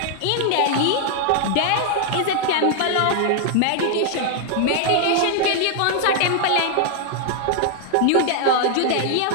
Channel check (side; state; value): both; different; correlation 0.00